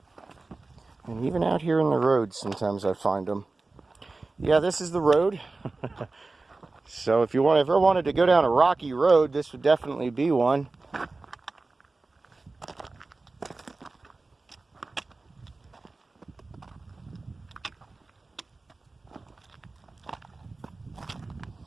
And even out here in the road, sometimes I find them. Yeah, this is the road. So if you ever wanted to go down a rocky road, this would definitely be one.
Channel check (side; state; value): left; quieter; 3.5 dB